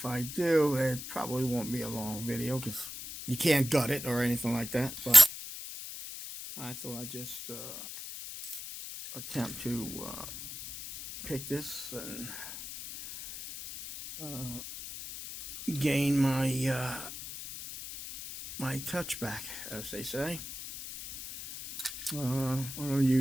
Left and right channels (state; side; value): noise; left; hiss, 9 dB below the sound